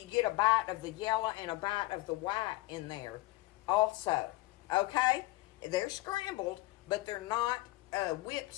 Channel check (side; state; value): right; quieter; 19.7 dB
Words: get a bite of the yellow and a bite of the white in there also. Okay? They're scrambled, but they're not whipped